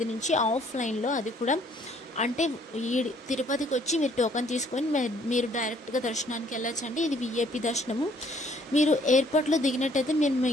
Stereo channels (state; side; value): normal; both; correlation 0.62